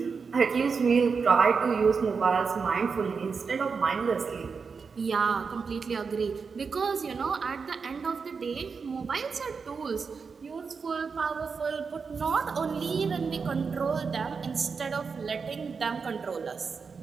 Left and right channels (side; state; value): left; quieter; 5.3 dB